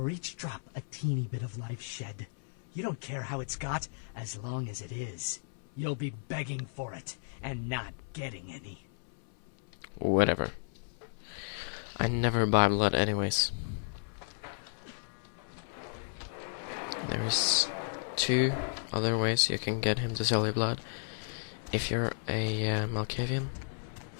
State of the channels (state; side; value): silent; right; 55 dB below the other